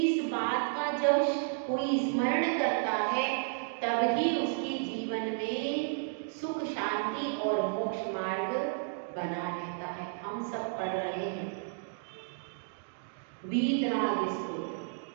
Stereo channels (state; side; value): silent; left; digital silence